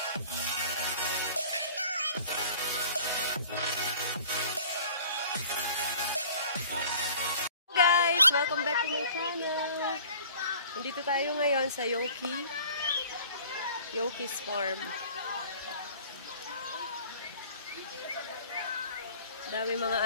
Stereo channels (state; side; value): inverted; both; correlation -0.48